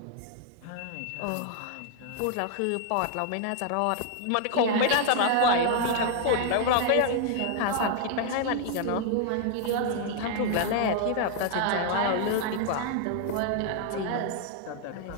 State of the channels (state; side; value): different; both; correlation 0.00